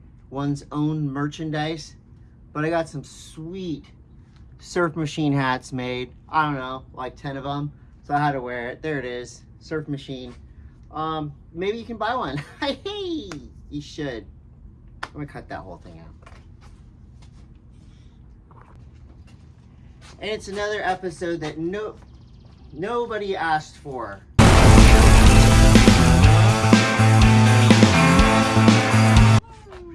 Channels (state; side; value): identical; both; correlation 1.00